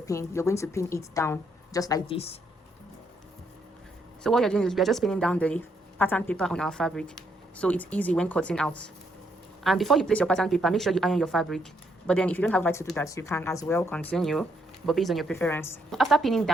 You're going to pin it down just like this. So what you're doing is we are just pinning down the pattern paper on our fabric, so it's easy when cutting out. And before you place your pattern paper, make sure you iron your fabric. But then if you don't have right to do that, you can as well continue, but based on your preference. After pinning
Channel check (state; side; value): normal; both; correlation 0.74